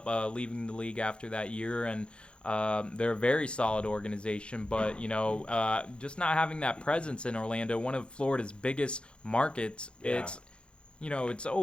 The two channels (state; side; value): late; right; 0.056 ms